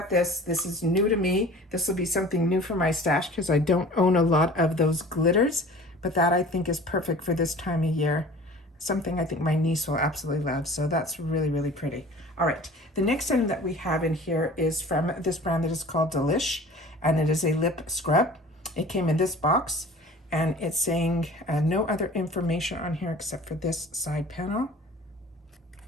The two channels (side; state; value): both; normal; correlation 0.44